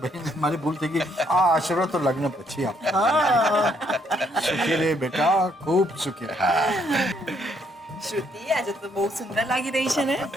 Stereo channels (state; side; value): normal; both; correlation 0.70